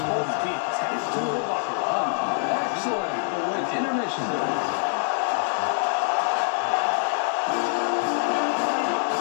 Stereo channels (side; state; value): right; silent; 62 dB below the other